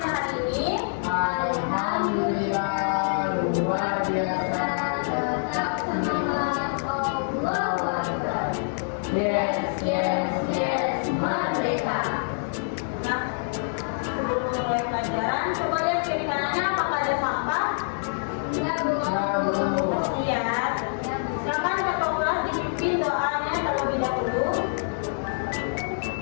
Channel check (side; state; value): right; silent; digital silence